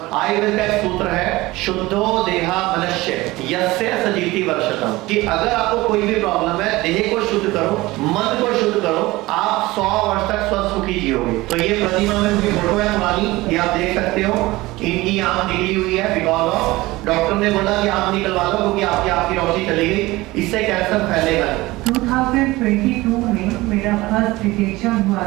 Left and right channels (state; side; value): quieter; left; 19.8 dB